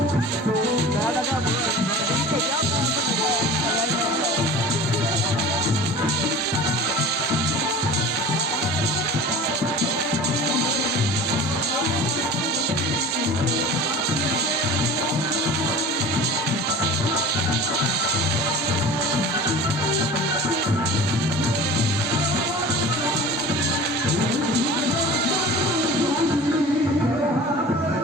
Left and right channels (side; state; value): both; normal; correlation 0.38